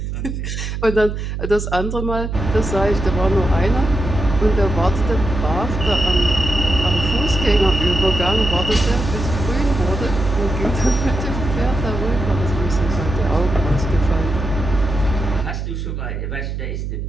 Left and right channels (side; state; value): right; noise; hum, 5 dB below the sound